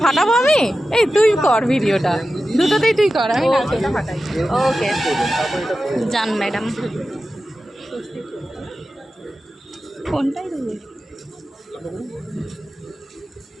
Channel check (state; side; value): normal; both; correlation 0.93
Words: ফাটাবো আমি? এই তুই কর ভিডিওটা, দুটোতেই তুই কর, আমি নারকেলটা ফাটাই। ওকে যান ম্যাডাম। কোনটাই দেবে?